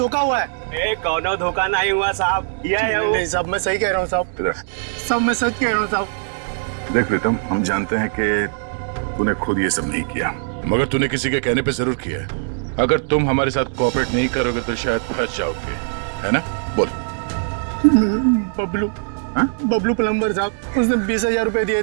हुआ है। कौनो धोखा नहीं हुआ साहब, ये है वो। नहीं साहब, मैं सही कह रहा हूँ साहब। इधर सब मैं सच कह रहा हूँ साहब। देख प्रीतम, हम जानते हैं कि तूने खुद ये सब नहीं किया, मगर तूने किसी के कहने पे जरूर किया है। अगर तुम हमारे साथ कोऑपरेट नहीं करोगे तो शायद फंस जाओगे, है ना? बोल। बबलू प्लम्बर साहब, उसने 20,000 रुपए दिए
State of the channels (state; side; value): silent; left; 65 dB below the other